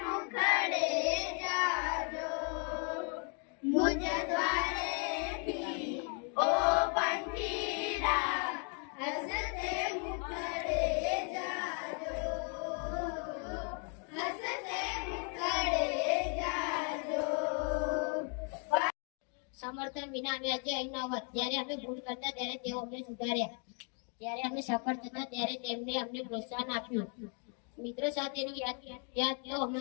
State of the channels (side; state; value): right; quieter; 39.5 dB